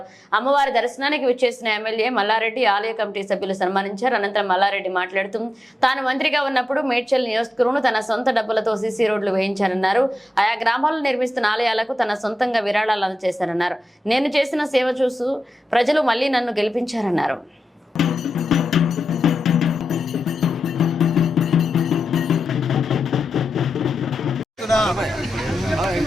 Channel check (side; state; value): both; normal; correlation 0.91